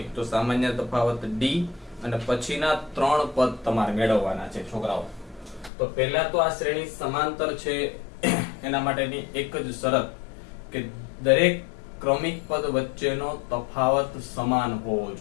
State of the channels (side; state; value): right; drops out; at 5.7 s